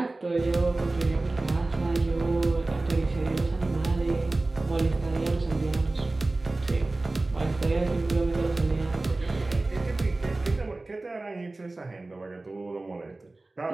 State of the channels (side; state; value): left; quieter; 3.1 dB